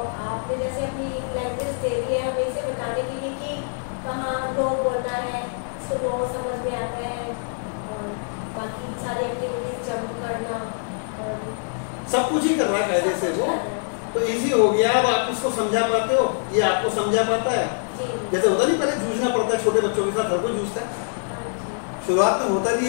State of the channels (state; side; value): silent; right; digital silence